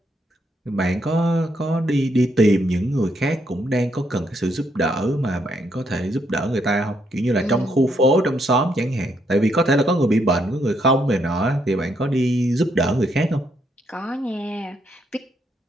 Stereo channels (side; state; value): both; normal; correlation 0.75